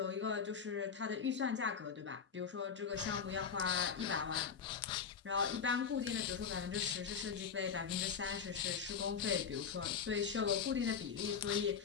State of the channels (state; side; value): quieter; right; 6.6 dB